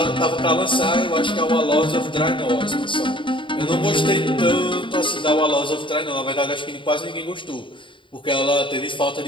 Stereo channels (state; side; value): late; right; 0.24 ms